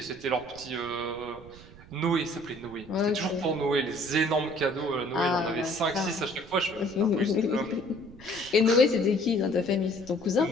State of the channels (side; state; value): right; noise; rumble, 20 dB below the sound